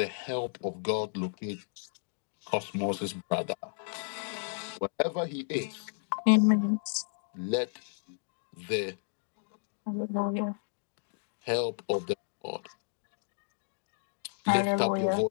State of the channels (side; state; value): right; silent; digital silence